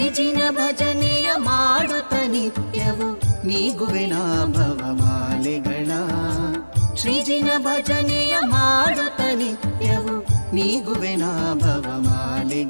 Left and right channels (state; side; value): inverted; both; correlation -1.00